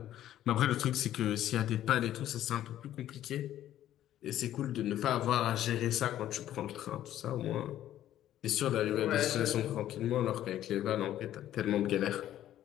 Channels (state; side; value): quieter; right; 12.3 dB